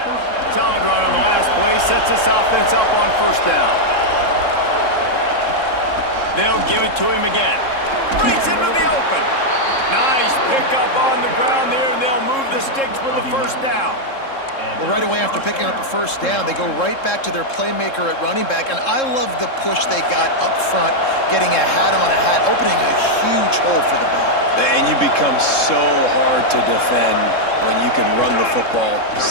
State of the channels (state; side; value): late; right; 3.7 ms